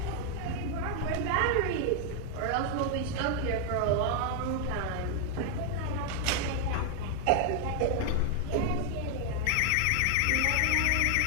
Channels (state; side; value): different; both; correlation 0.00